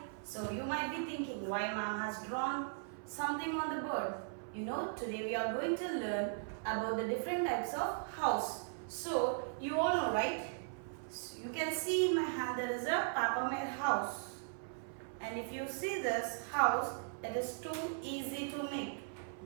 So you might be thinking why mom has drawn something on the board. Today we are going to learn about the different types of house. So you all know, right? So you can see in my hand there is a Papa made house. And if you see this house, it is too easy to make.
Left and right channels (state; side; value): silent; left; 52 dB below the other